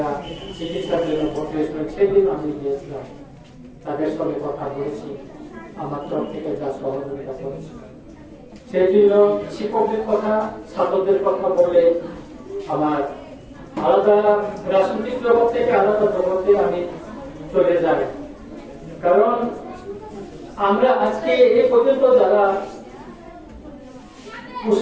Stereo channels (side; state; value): both; identical; correlation 1.00